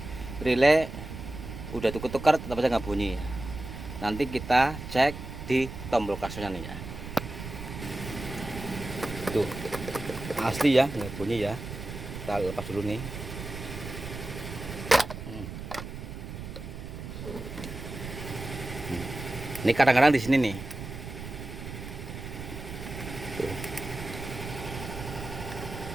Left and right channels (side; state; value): right; noise; rumble, 9 dB below the sound